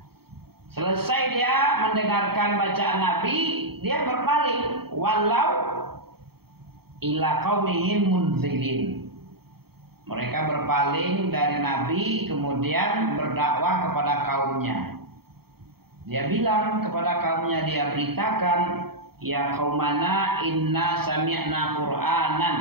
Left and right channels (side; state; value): left; late; 0.95 ms